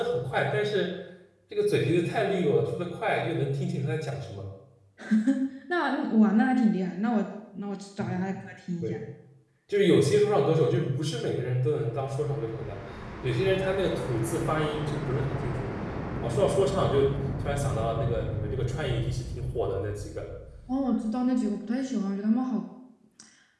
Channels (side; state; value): both; identical; correlation 1.00